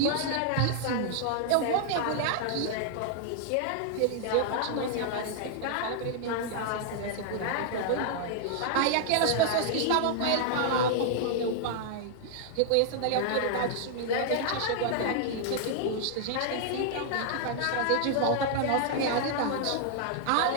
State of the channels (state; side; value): different; both; correlation -0.01